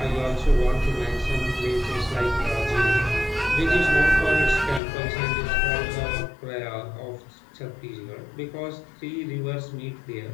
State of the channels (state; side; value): drops out; right; at 4.8 s